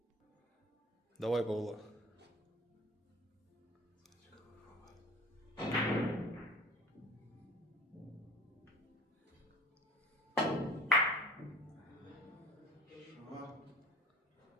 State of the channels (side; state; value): both; normal; correlation 0.42